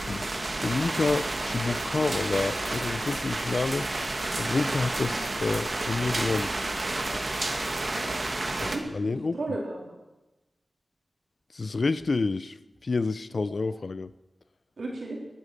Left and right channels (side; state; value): both; normal; correlation 0.94